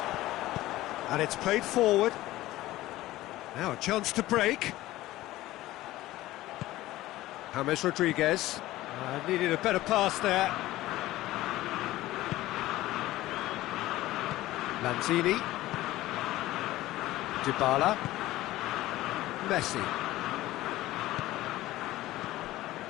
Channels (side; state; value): right; quieter; 16.5 dB